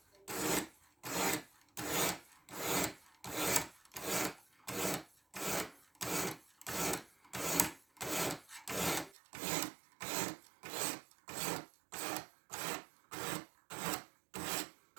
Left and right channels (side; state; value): left; drops out; at 9.2 s